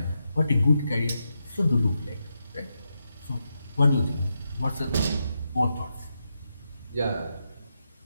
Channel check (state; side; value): inverted; both; correlation -0.85